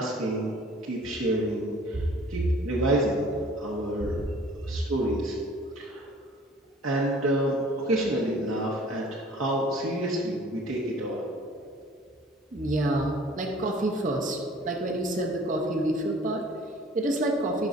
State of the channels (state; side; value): normal; both; correlation 0.51